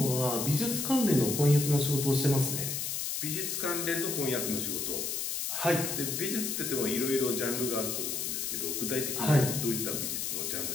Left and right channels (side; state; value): left; noise; hiss, 2 dB below the sound